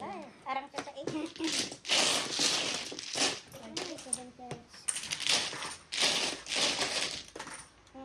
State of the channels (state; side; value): identical; both; correlation 1.00